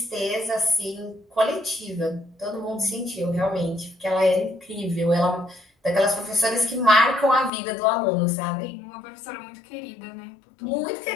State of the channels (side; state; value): right; drops out; at 7.5 s